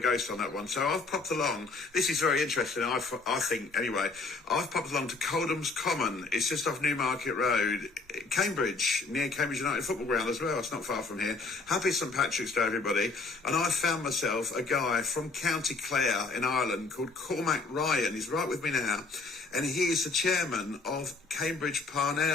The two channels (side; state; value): right; quieter; 3.9 dB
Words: on that one. So I've popped along. This is very interesting, I think, anyway. I've popped along to Coldham's Common. It's just off Newmarket Road, Cambridge, near Cambridge United Football Ground as well. It's not far from here. Happy St. Patrick's Day, everybody. And I found myself a guy from County Clare in Ireland called Cormac Ryan. He's right with me now. And he is the chairman of Cambridge